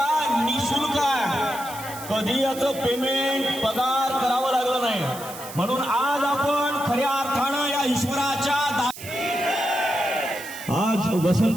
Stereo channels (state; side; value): noise; right; hiss, 13 dB below the sound